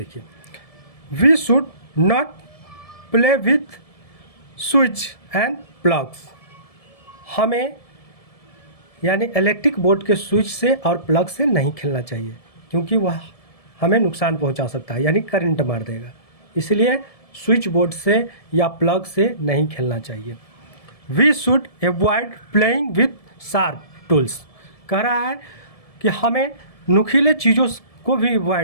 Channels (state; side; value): late; right; 1.7 ms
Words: we should not play with switch and plugs. हमें यानी इलेक्ट्रिक बोर्ड के स्विच से और प्लग से नहीं खेलना चाहिए क्योंकि वह हमें नुकसान पहुंचा सकता है, यानी करंट मार देगा। इसलिए स्विच बोर्ड से या प्लग से नहीं खेलना चाहिए। We should avoid playing with sharp tools. कह रहा है कि हमें नुकीले चीज़ों को भी